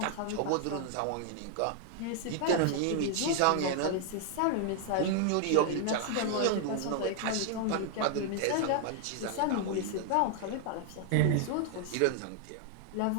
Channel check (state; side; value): different; both; correlation 0.00